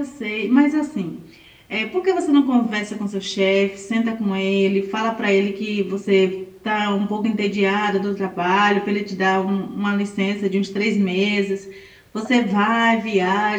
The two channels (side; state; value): both; identical; correlation 1.00